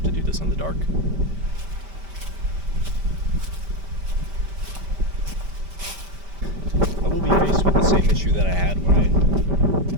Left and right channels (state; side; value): late; left; 5.1 ms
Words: to do this in the dark. I will be faced with the issue that I had when I